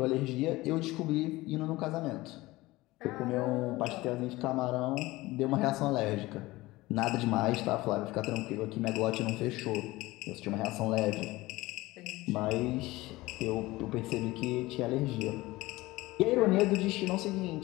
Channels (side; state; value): right; quieter; 19.5 dB